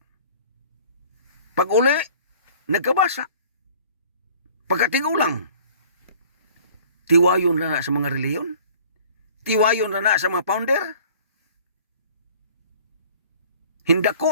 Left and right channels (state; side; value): inverted; both; correlation -0.50